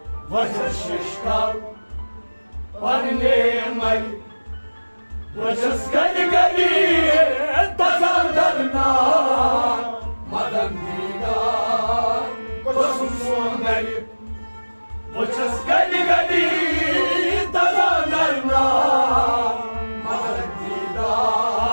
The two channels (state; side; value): inverted; both; correlation -1.00